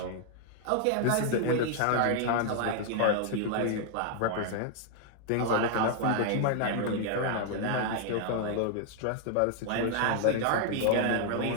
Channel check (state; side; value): different; both; correlation 0.00